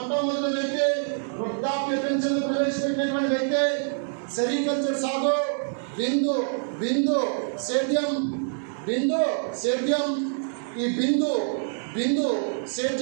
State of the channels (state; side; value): silent; left; digital silence